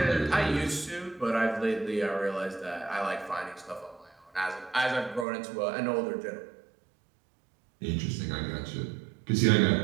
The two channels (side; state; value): left; drops out; at 5.2 s